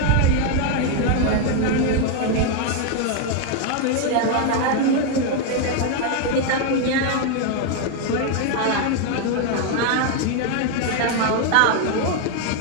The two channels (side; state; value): both; different; correlation 0.00